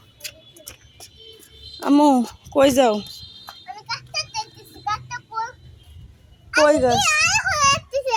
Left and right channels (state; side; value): identical; both; correlation 1.00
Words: আম্মু কই যাও? আমি কাটতে দেখতেছি, কাটতে কই? কই গাছ? আয় হয়ে